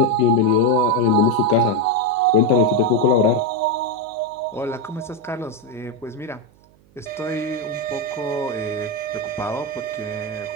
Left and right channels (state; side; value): noise; right; hum, 30 dB below the sound